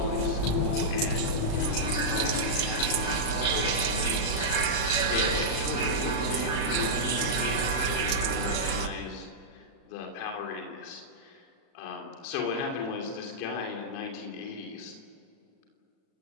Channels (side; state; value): right; late; 37 ms